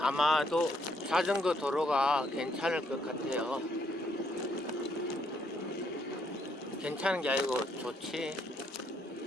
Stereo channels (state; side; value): normal; both; correlation 0.72